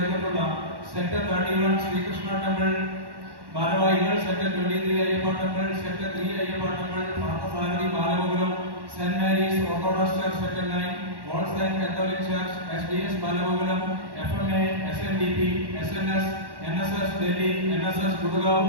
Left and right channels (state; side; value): late; left; 1.1 ms